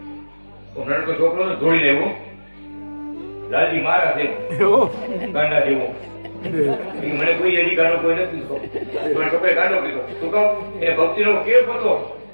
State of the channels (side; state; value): both; inverted; correlation -1.00